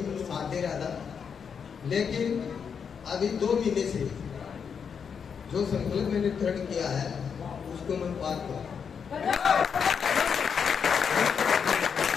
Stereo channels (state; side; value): quieter; right; 6.7 dB